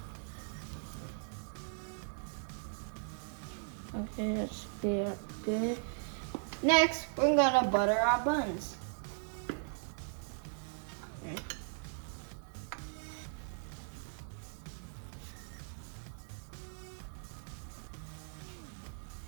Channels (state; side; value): silent; left; digital silence